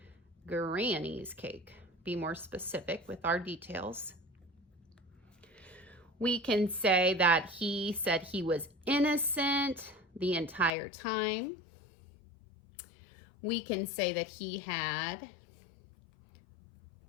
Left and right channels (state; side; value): drops out; right; at 10.7 s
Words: granny's cake. Be more specific with our details. We can say that he said he was innocent the entire time. We can say that he had